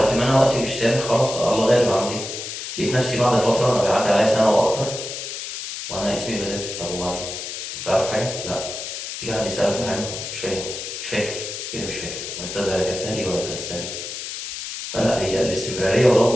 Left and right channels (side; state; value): left; noise; hiss, 7 dB below the sound